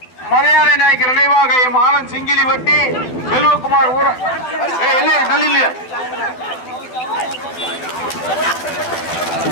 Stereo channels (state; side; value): late; right; 12 ms